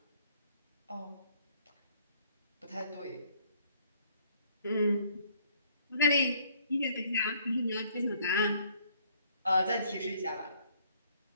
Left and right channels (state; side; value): inverted; both; correlation -0.63